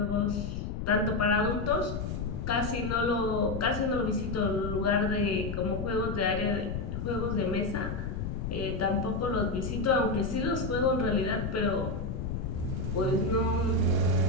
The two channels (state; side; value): noise; left; rumble, 4 dB below the sound